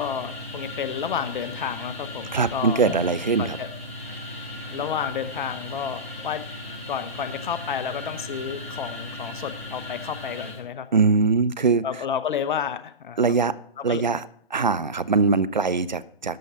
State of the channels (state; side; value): normal; both; correlation -0.18